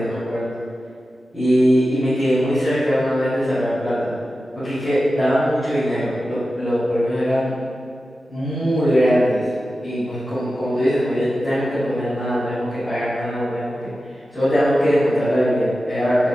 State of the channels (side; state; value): both; normal; correlation 0.93